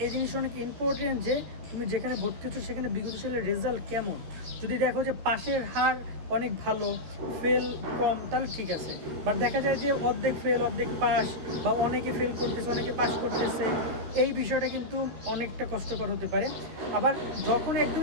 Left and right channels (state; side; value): late; left; 14 ms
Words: এই জিনিসটা অনেক ইম্পর্টেন্ট যে তুমি যেখানে ভর্তি হচ্ছ সেখানে বিগত সালের রেজাল্ট কেমন। যদি দেখো যে পাশের হার অনেক ভালো, ফেল কম, তাহলে ঠিক আছে। বাট দেখা যায় যে অর্ধেক ফেল অর্ধেক পাস, বা অনেকে ফেল করতেছে অনেকে পাস করতেছে, এই বিষয়টা কিন্তু অনেকটা কষ্টকর হতে পারে। আবার যখন